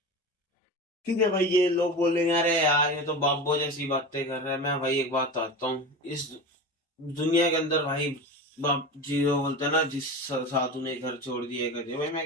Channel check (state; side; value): normal; both; correlation 0.28